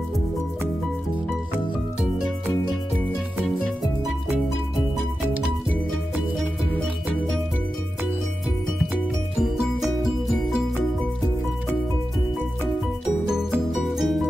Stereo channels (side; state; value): both; normal; correlation 0.92